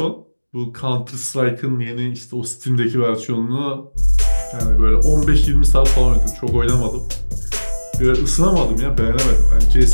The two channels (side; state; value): both; inverted; correlation -1.00